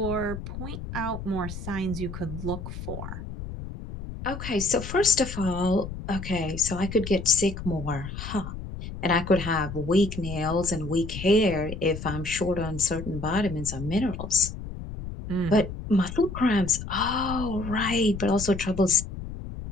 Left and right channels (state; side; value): noise; left; rumble, 9 dB below the sound